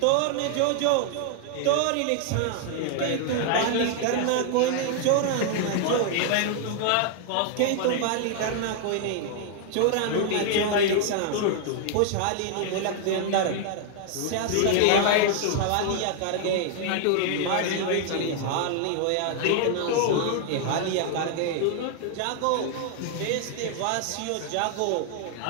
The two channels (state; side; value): different; both; correlation 0.00